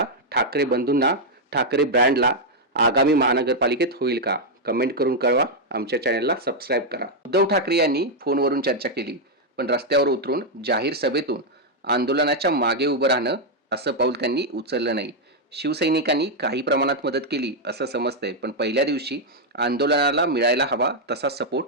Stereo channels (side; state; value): both; normal; correlation -0.01